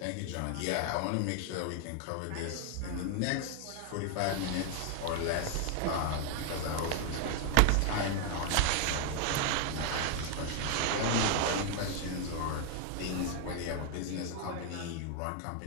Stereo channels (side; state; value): both; different; correlation 0.00